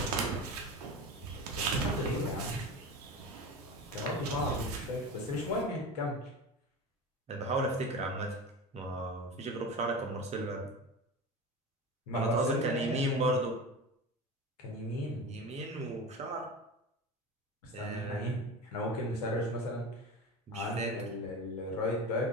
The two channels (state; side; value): normal; both; correlation 0.29